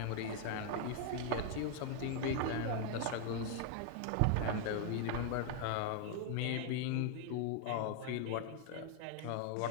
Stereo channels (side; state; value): both; different; correlation 0.00